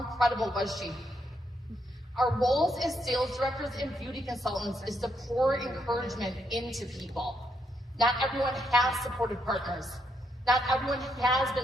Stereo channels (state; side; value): normal; both; correlation 0.77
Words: was she? Our roles as sales directors and beauty consultants is to pour encouragement into people. Not everyone has supportive partners. Not everyone has